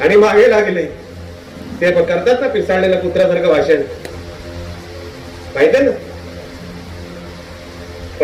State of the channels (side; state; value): both; identical; correlation 1.00